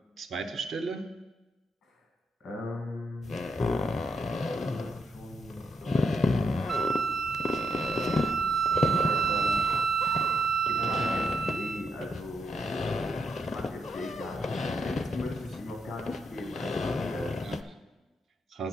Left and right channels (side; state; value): both; normal; correlation 0.79